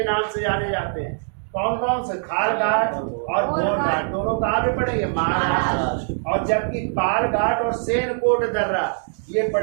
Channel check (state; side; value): silent; left; digital silence